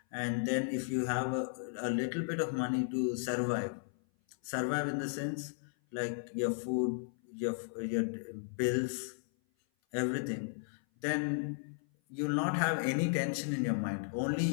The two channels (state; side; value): silent; right; 54 dB below the other